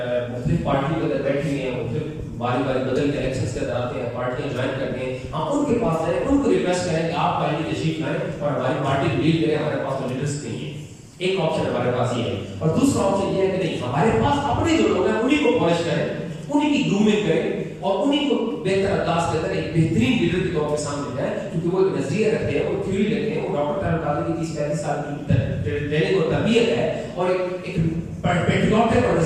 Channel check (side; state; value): both; identical; correlation 1.00